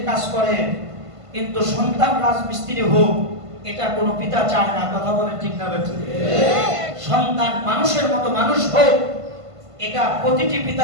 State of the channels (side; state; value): left; late; 1.5 ms